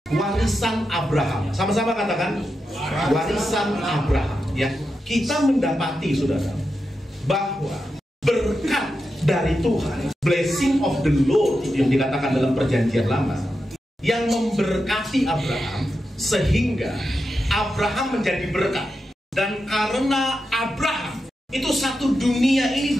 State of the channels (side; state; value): both; normal; correlation 0.88